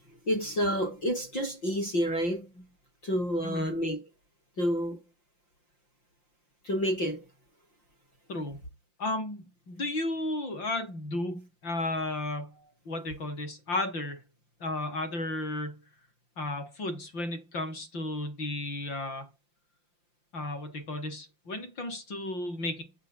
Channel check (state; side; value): late; right; 5.8 ms